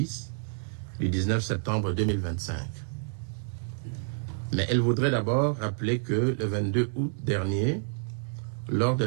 du 19 septembre 2025. Mais elle voudrait d'abord rappeler que le 22 août dernier, lors de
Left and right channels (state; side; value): silent; left; digital silence